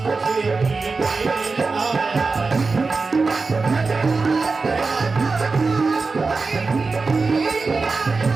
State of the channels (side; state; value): left; quieter; 4.1 dB